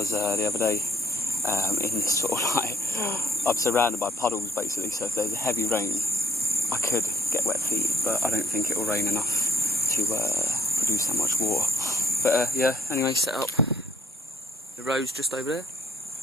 the other day, in sort of like, I'm surrounded by puddles basically, so if there's a heavy rain I could get wet feet, but I don't think it will rain enough to produce that much water. But yeah, anyway, set up. The road's just over there.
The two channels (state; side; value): normal; both; correlation 0.65